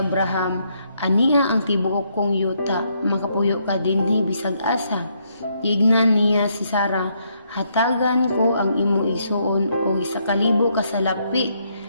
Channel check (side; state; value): both; inverted; correlation -0.74